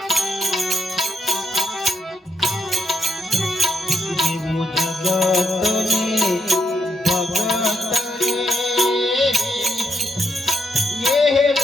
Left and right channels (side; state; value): both; normal; correlation 0.79